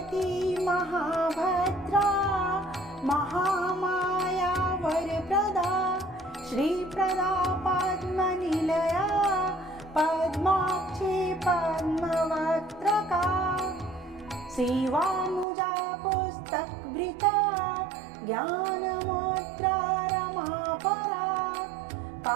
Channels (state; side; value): drops out; left; at 15.5 s